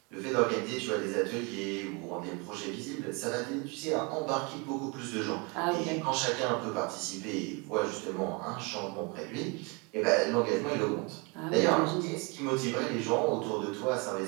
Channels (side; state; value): left; quieter; 30.3 dB